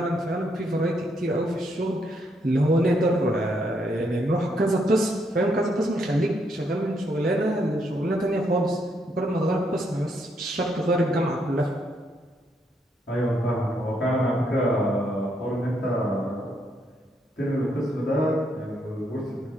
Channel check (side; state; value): both; normal; correlation 0.75